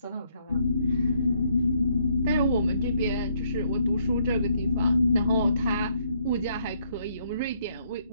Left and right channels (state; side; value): inverted; both; correlation -0.71